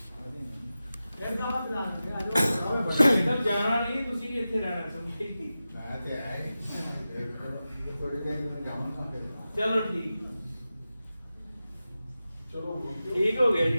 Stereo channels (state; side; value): inverted; both; correlation -0.94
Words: جانا نہیں، تسی اتنے رہنا سمجھے. چلو ٹھیک، چلو ٹھیک ہو گیا